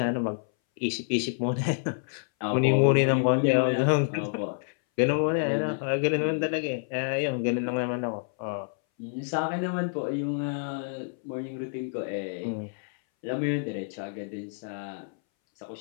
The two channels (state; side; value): silent; right; 59 dB below the other